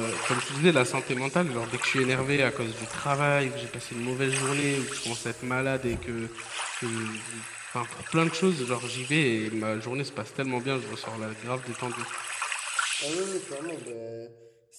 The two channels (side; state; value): both; identical; correlation 1.00